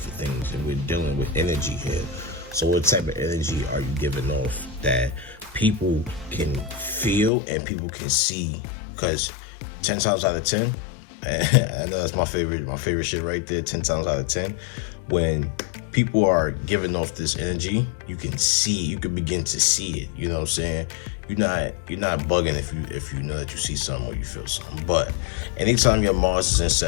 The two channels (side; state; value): right; drops out; at 7.3 s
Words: things, and we're dealing with energy here. So what type of energy are you giving off that people can feel and people can see? Because 10 times out of 10, I know that's my favorite shit right there. 10 times out of 10, when people are giving off this energy, you can begin to see it. You know what I'm saying? You're not bugging if you know that you see something or you feel something. But anytime your Mars is in